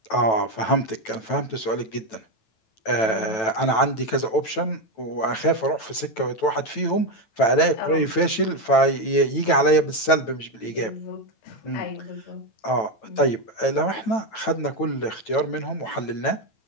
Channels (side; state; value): right; late; 9.1 ms